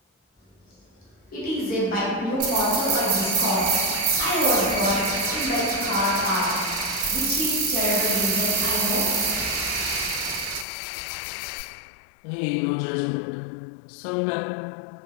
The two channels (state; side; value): drops out; right; at 10.7 s